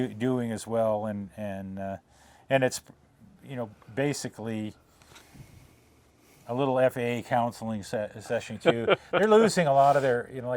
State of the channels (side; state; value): both; identical; correlation 1.00